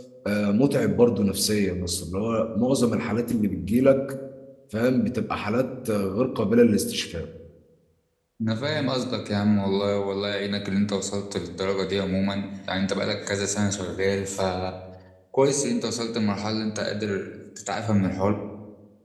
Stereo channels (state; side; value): identical; both; correlation 1.00